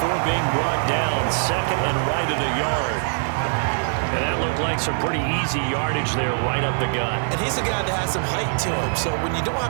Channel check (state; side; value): silent; left; 62 dB below the other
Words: being brought down. Second and right at a yard. And that looked like some pretty easy yardage there right up the gut. And he's a guy that has some height to him. So when you don't